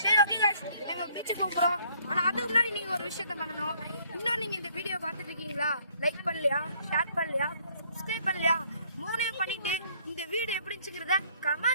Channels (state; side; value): inverted; both; correlation -0.62